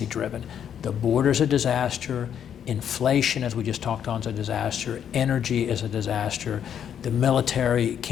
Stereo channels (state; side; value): quieter; right; 8.9 dB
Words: driven. The border's a disaster. Inflation, as we just talked on, is a disaster. Energy is a disaster. The military